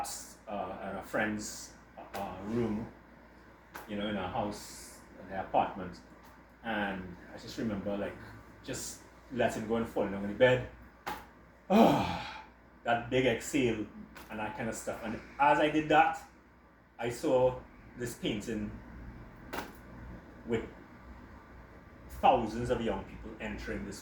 in a friend's room, in a house, in their apartment. And I just remember just letting go and falling on the bed. That big exhale and that kind of stuff. And as I did that, I saw this painting with thousands of young people entering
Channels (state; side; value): identical; both; correlation 1.00